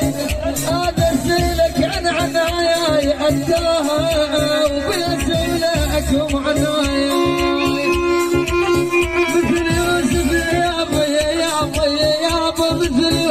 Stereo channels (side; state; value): both; identical; correlation 1.00